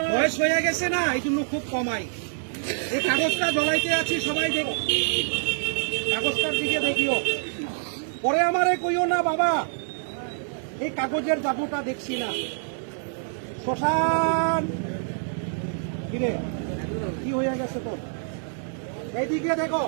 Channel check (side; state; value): left; silent; digital silence